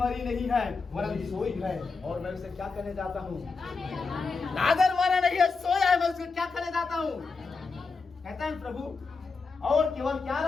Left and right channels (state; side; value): quieter; right; 4.4 dB